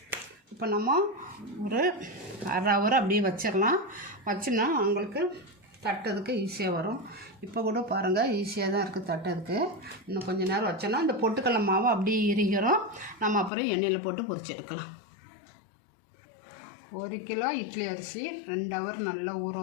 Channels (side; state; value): right; drops out; at 13.5 s